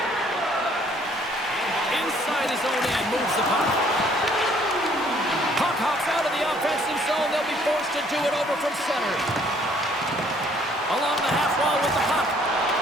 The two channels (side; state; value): both; normal; correlation 0.61